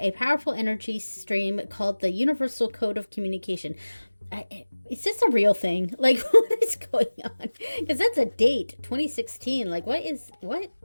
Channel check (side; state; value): both; inverted; correlation -1.00